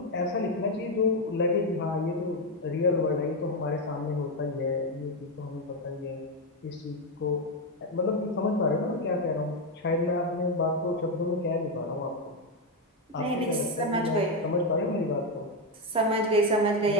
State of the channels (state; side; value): normal; both; correlation 0.06